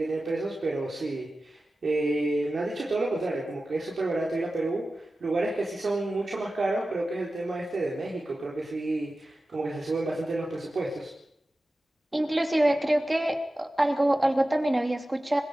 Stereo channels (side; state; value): both; normal; correlation 0.95